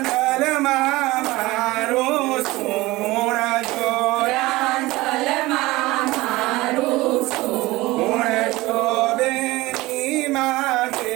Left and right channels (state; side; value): quieter; left; 19.9 dB